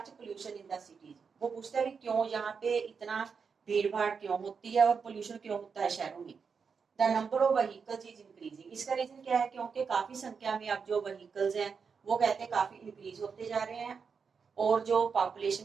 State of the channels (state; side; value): quieter; left; 5.8 dB